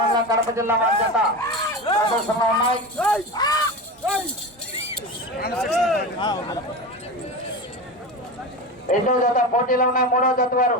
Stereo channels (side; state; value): both; normal; correlation 0.25